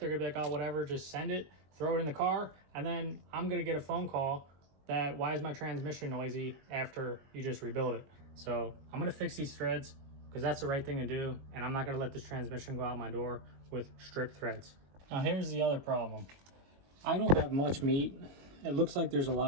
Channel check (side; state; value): left; late; 22 ms